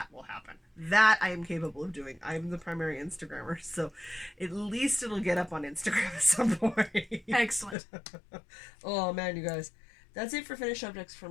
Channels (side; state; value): right; drops out; at 7.8 s